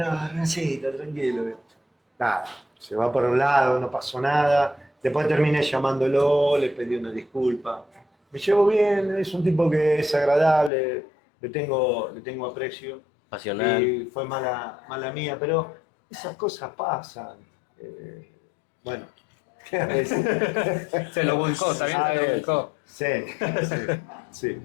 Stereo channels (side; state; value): right; drops out; at 10.7 s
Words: Hernancito, tranquilo. Nada, se va por un lado, no pasó nada. Después terminé llamándolo, le pedí una disculpa. Me llevo bien, es un tipo que es agradable, le tengo aprecio. Pasional. Y fue mala mía, pero esas cosas pasan. Bueno, a veces. Se lo buscó, también A se lo ver, buscó. Sí, sí.